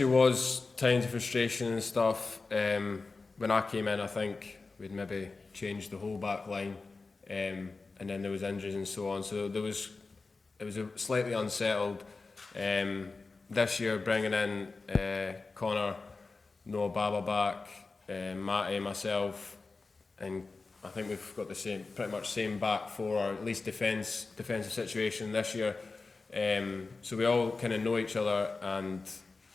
was times of frustration and stuff. When I came in, I think we'd maybe changed the whole back line, and then there was injuries and so on. So it was a slightly unsettled. This year, bringing in Connor, Noah Baba back, Matty, myself, and I think we've got the pretty much same back four, or at least defensive situation this year. So we all kind of know each other, and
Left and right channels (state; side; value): quieter; right; 3.9 dB